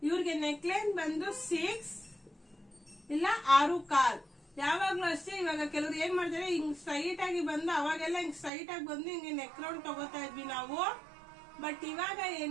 ಇವ್ರಿಗೆ ನೆಕ್ ಲೈನ್ ಬಂದು 6 ಇಲ್ಲ 6.25. ಯಾವಾಗ್ಲೂ ಅಷ್ಟೇ. ಇವಾಗ ಕೆಲವ್ರು ಏನ್ ಮಾಡ್ತಾರೆ, ಹಿಂಗ್ ಸ್ಟ್ರೈಟ್ ಆಗಿ ಬಂದು ಅವಾಗೆಲ್ಲ ಹಿಂಗ್ ಸ್ಟ್ರೈಟ್ ಆಗಿ ಬಂದು ಹಿಂಗೆ ನೆಕ್ ರೌಂಡ್ ತಗೋತಾ ಇದ್ವಿ ನಾವು. ಬಟ್ ಇವಾಗ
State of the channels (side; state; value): left; drops out; at 8.5 s